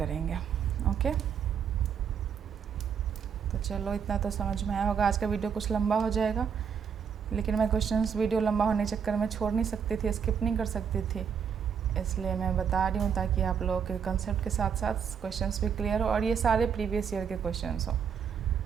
ओके, तो चलो इतना तो समझ में आया होगा। आज का वीडियो कुछ लंबा हो जाएगा, लेकिन मैं क्वेश्चंस वीडियो लंबा होने के चक्कर में छोड़ नहीं सकती थी, स्किप नहीं कर सकती थी, इसलिए मैं बता रही हूँ ताकि आप लोगों के कंसेप्ट के साथ साथ क्वेश्चंस भी क्लियर हो, और ये सारे प्रीवियस ईयर के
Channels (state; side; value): quieter; left; 7.2 dB